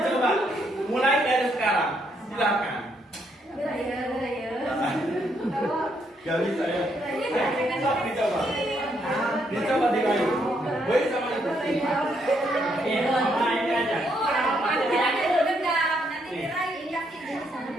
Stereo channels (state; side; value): normal; both; correlation 0.75